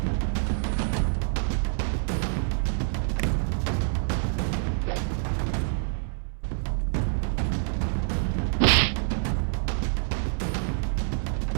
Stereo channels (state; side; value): silent; left; 60 dB below the other